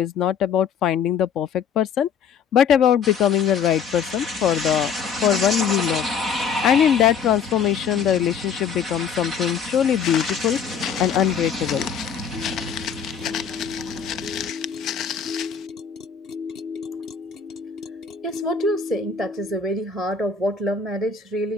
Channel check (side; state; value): right; quieter; 6.9 dB